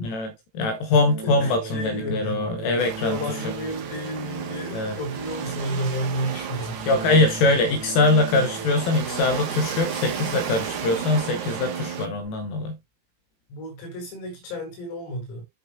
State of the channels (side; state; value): right; late; 18 ms